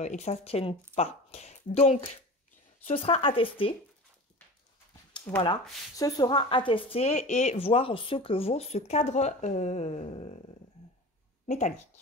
ça ne tienne pas. Donc, ce sera à tester. Voilà, ce sera à tester et voir ce que vaut ce cadre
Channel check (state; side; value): normal; both; correlation 0.34